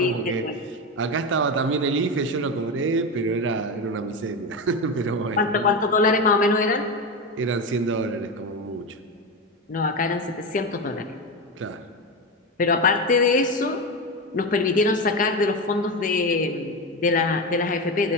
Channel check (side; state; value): both; normal; correlation 0.17